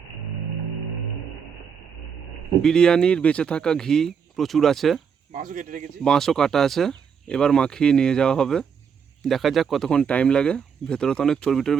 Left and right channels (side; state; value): left; quieter; 6.9 dB